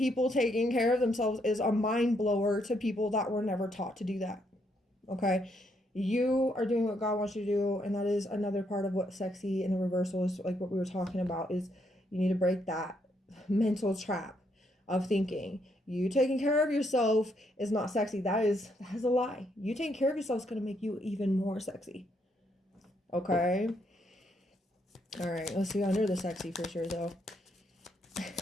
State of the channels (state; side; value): normal; both; correlation 0.75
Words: taking care of themselves is a mind blower to people that were never taught to do that. Okay? You are doing what God wants you to do, and that is another part of what sexy in the reversal is, like what we were talking about, is you need to break that mental trap of thinking you taking care of yourself is not sexy. That is a lie. You taking care of yourself is going to make you even more sexy. Okay? All right, let's see under the sexy for sure though.